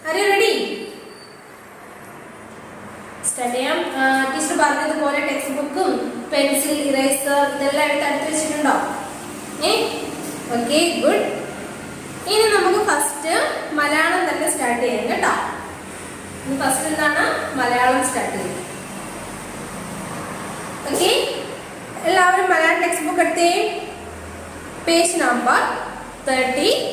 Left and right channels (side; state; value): both; identical; correlation 1.00